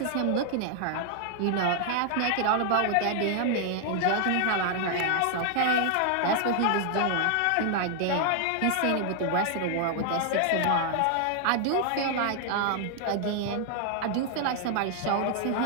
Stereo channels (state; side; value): different; both; correlation 0.00